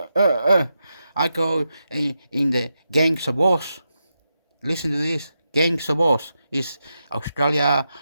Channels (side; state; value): both; inverted; correlation -0.86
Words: I go in the Gangs of Oz. Listen to this. Gangs of Oz is Australia